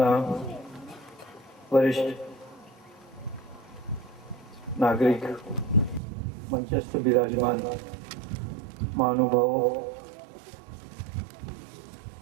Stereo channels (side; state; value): left; drops out; at 6.0 s